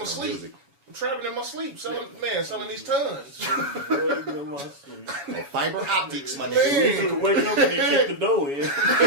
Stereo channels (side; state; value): left; late; 7.1 ms